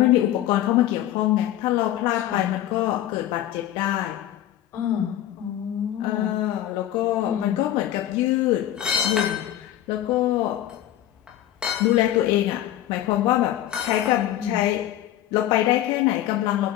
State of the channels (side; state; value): right; quieter; 12.7 dB